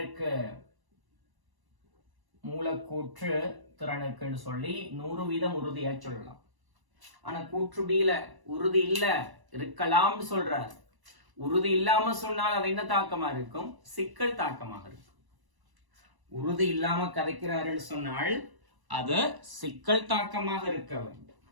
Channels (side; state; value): left; late; 1.0 ms